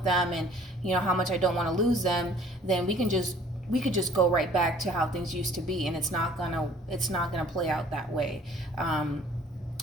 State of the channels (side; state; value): both; normal; correlation 0.54